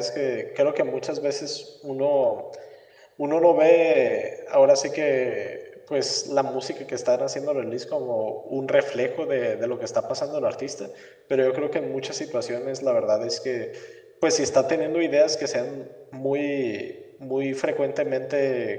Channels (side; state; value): both; identical; correlation 1.00